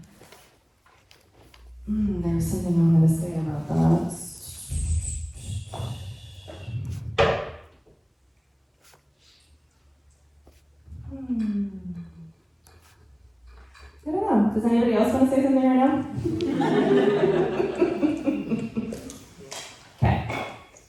there was something I wanted to say about that. I don't know. Does anybody else want to say something right now? Okay.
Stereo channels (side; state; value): both; identical; correlation 1.00